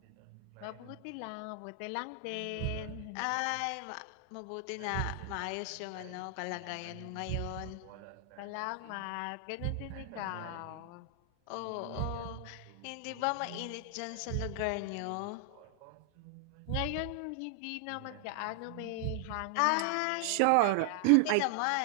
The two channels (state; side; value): different; both; correlation 0.00